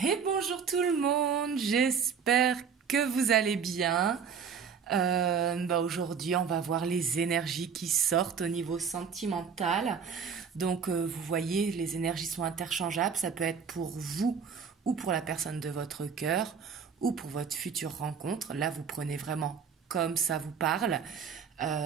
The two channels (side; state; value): left; quieter; 6.5 dB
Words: bonjour tout le monde, j'espère que vous allez bien. Aujourd'hui, on va voir les énergies qui sortent au niveau sentimental. Donc, vous voyez, les énergies sont interchangeables. Ça peut être pour vous ou pour la personne de votre cœur ou pour votre future rencontre. Là, vous prenez vraiment comme ça vous parle.